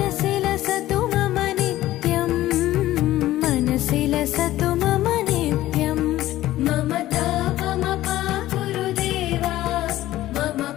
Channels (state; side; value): quieter; right; 15.1 dB